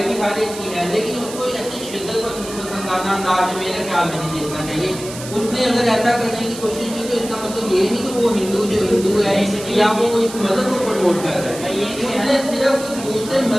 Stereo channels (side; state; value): right; noise; hiss, 12 dB below the sound